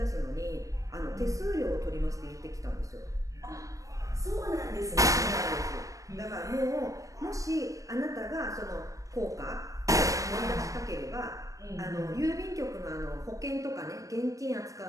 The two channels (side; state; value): left; late; 0.16 ms